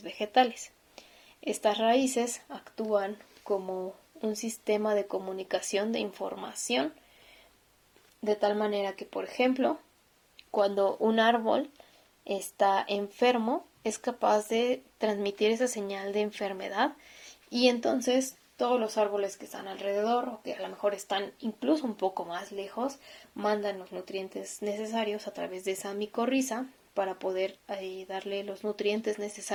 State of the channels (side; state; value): both; identical; correlation 1.00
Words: vegetales. Estas raíces actúan como un sistema de comunicación de información, de tal manera que, por ejemplo, cuando un árbol está enfermo, es capaz de transmitir esa señal de enfermedad y entonces todos los árboles que están alrededor o que a lo mejor están incluso un poco más lejos mandan los nutrientes necesarios a través de esa micorriza para poder darle los nutrientes